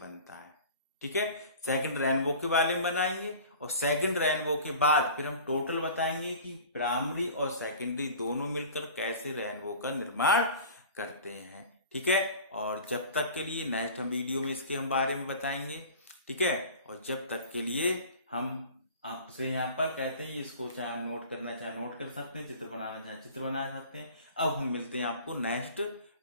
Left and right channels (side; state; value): both; inverted; correlation -0.41